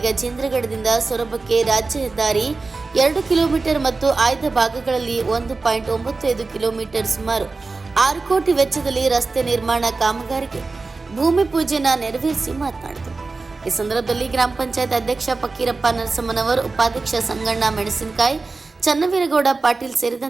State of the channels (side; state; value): left; quieter; 3.8 dB